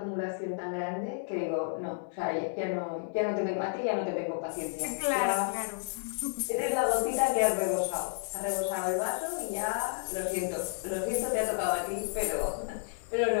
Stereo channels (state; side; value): silent; right; digital silence